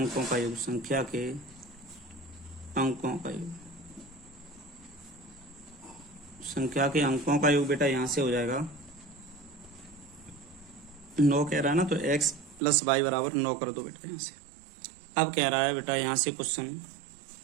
का योग, संख्या के अंकों का योग, संख्या के अंकों का योग बेटा यहाँ से हो जाएगा 9 कह रहा है ना, तो x प्लस वाई बराबर 9 कर दो बेटा यहाँ से। अब कह रहा है बेटा यहाँ से क्वेश्चन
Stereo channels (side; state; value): left; drops out; at 12.6 s